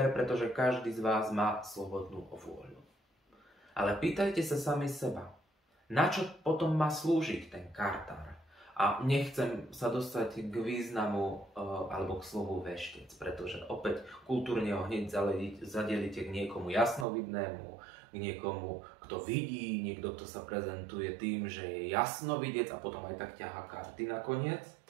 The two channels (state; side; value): drops out; left; at 17.1 s